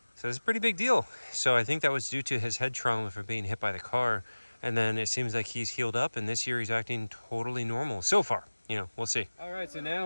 So it's a pretty big deal. So I think that was due to his head trauma from being hit by the car. And then it seems like he's healed up, and this year he's acting totally normal so far. You know, we'll see. All right, so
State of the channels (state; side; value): inverted; both; correlation -1.00